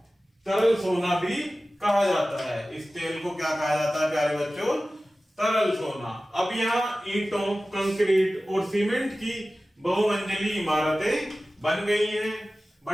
तरल सोना भी कहा जाता है। इस तेल को क्या कहा जाता है प्यारे बच्चों? तरल सोना। अब यहाँ ईंटों, कंक्रीट और सीमेंट की बहुमंजिली इमारतें बन गई हैं।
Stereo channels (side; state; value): both; normal; correlation 0.96